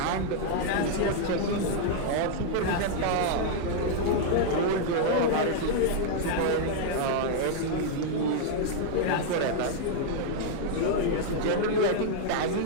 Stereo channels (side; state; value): both; different; correlation -0.01